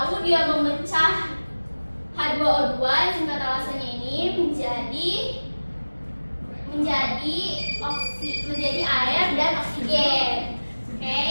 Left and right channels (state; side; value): inverted; both; correlation -1.00